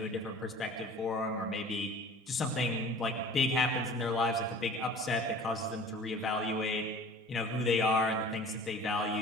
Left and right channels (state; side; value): normal; both; correlation 0.45